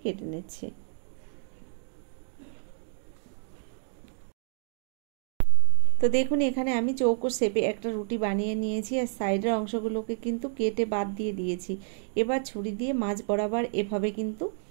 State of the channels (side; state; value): left; silent; digital silence